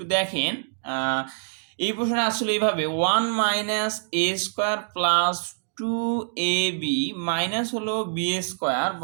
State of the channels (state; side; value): silent; left; digital silence